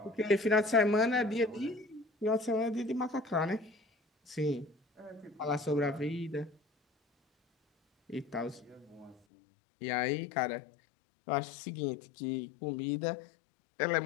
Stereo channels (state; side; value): drops out; right; at 9.2 s